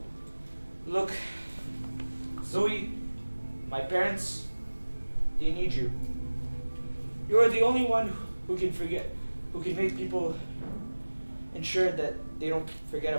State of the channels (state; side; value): inverted; both; correlation -1.00